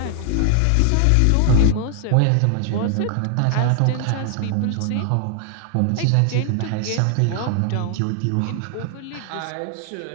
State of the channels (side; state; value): both; different; correlation 0.00